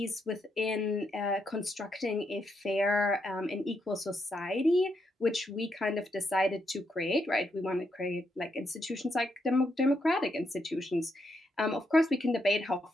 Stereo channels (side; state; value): both; normal; correlation 0.79